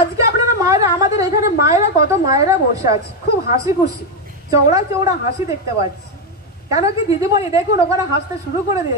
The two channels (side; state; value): both; normal; correlation 0.06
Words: আপনারা মায়েরা, আমাদের এখানে মায়েরা, কত মায়েরা বসে আছে, খুব হাসি খুশি, চওড়া চওড়া হাসি দেখতে পাচ্ছি। কেন কি দিদিমণি দেখুন ওখানে হাসতে শুরু করে